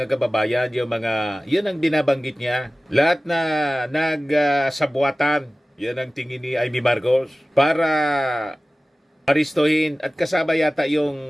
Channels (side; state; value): both; normal; correlation 0.97